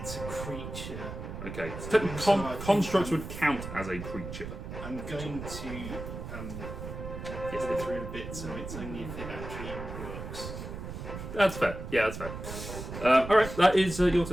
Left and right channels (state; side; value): noise; right; rumble, 8 dB below the sound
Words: a creature. Okay. So technically, constructs would count as a creature. I'm going to Yes, go they do. through a bit, so it's only if it actually works. That's fair. Yeah, that's fair. Alright, that is your